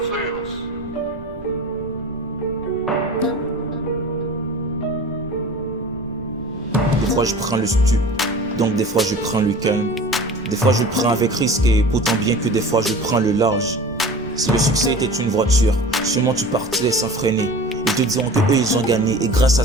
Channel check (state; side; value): noise; right; rumble, 17 dB below the sound